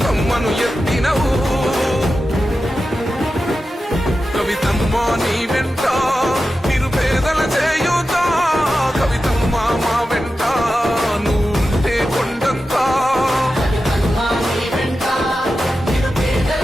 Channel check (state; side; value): normal; both; correlation 0.92